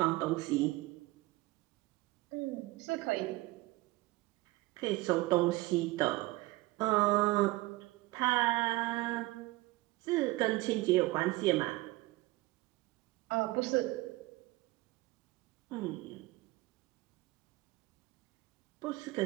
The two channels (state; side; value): quieter; left; 20.1 dB